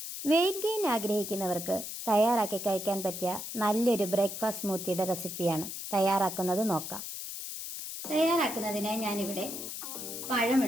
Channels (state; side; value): noise; left; hiss, 7 dB below the sound